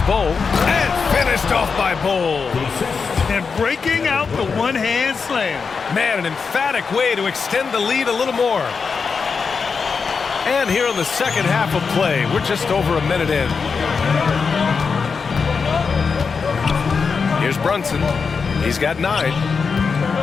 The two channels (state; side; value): quieter; right; 5.3 dB